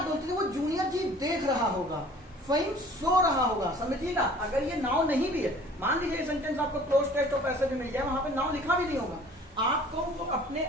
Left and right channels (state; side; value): normal; both; correlation 0.50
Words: बोलते थे वो जूनियर जी देख रहा होगा, फहीम सो रहा होगा, समझिएगा। अगर ये नाउ नहीं भी है, मान लीजिए सेंटेंस आपको क्लोज टेक्स्ट और पैसेज में मिल जाए, वहां पे नाउ लिखा भी नहीं होगा, आपको वो अपने